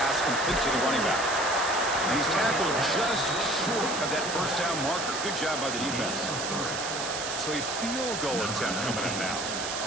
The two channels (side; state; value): right; noise; hiss, 4 dB below the sound